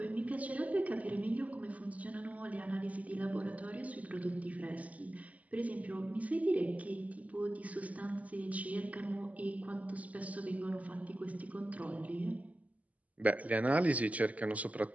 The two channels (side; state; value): left; late; 0.073 ms